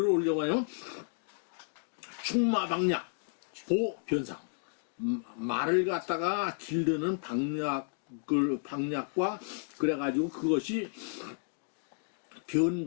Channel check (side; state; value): right; silent; digital silence